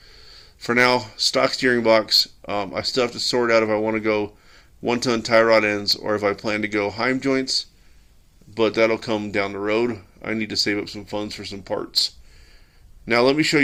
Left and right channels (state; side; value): identical; both; correlation 1.00